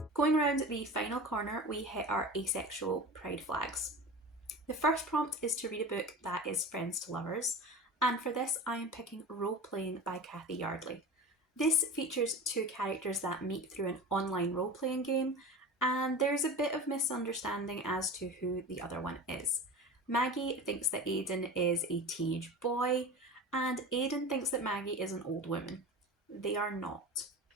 Going around the final corner, we hit our asexual pride flags. The first prompt is to read a book that is friends to lovers, and for this I am picking Role Playing by Kathy Yardley. This features two characters that meet through an online role-playing game, and there's a bit of misunderstanding as to who the other one is. Maggie thinks that Aidan is a teenage boy, and Aidan thinks that Maggie is an old woman. They are not.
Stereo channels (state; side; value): normal; both; correlation 0.32